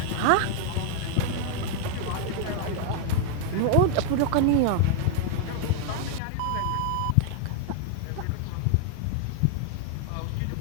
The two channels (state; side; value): different; both; correlation 0.00